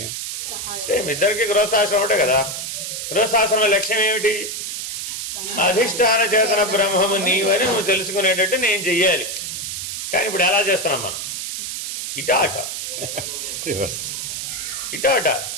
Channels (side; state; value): right; noise; hiss, 5 dB below the sound